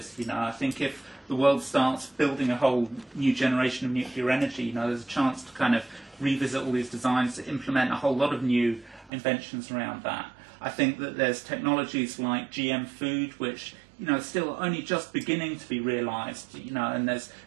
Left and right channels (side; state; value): left; drops out; at 9.1 s